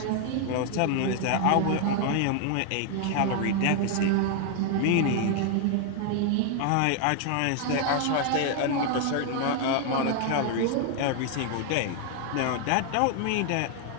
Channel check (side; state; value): both; different; correlation 0.00